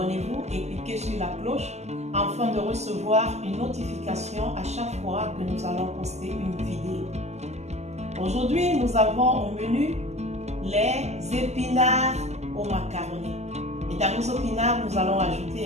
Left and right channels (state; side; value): late; left; 0.33 ms